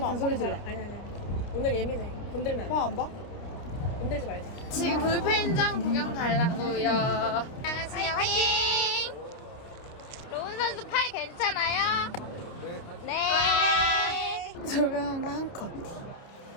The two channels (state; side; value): late; right; 29 ms